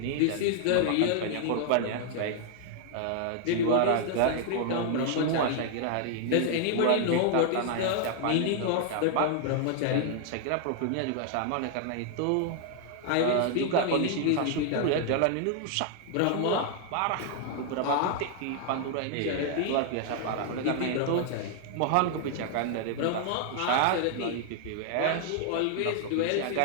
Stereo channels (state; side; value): different; both; correlation 0.00